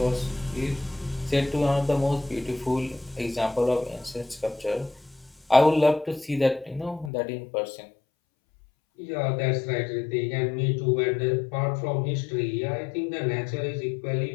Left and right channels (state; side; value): drops out; right; at 7.1 s